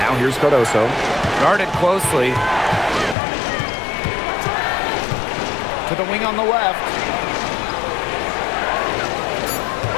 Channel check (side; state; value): right; drops out; at 3.2 s